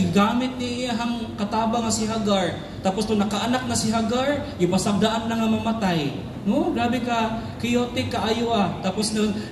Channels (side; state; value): both; identical; correlation 1.00